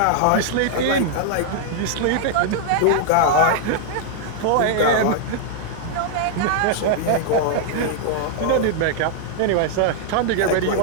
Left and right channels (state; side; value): different; both; correlation -0.01